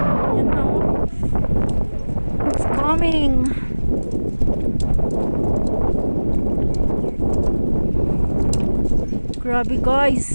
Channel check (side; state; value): both; inverted; correlation -1.00